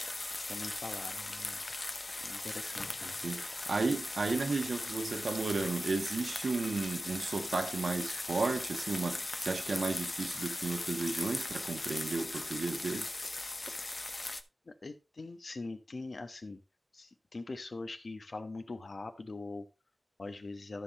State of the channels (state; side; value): normal; both; correlation 0.94